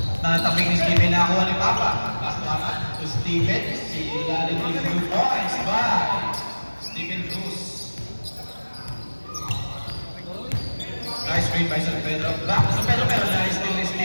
Natapik ni Steven na ako ni Papa. Pasaman to Steven. Si Ilalim ni 2 points by Steven Cruz. Nice screen by San Pedro. Back to San Pedro pero nice steal ni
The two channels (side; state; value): both; inverted; correlation -1.00